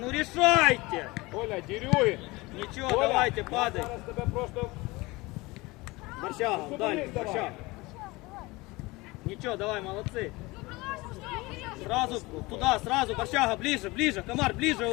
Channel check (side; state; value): right; quieter; 22.5 dB